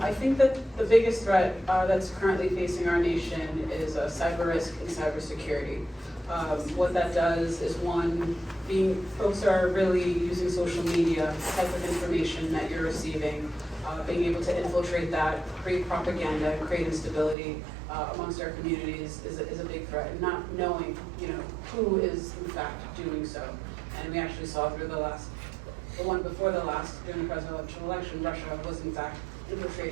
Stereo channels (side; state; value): left; drops out; at 17.4 s